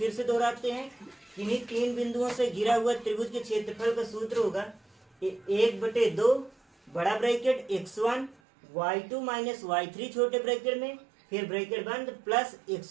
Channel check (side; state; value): left; drops out; at 8.3 s